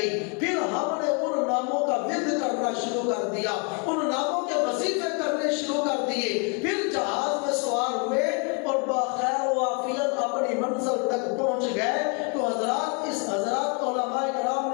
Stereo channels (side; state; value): right; quieter; 35.1 dB